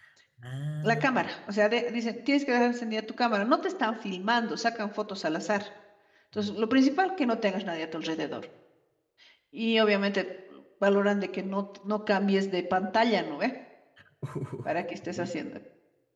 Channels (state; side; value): identical; both; correlation 1.00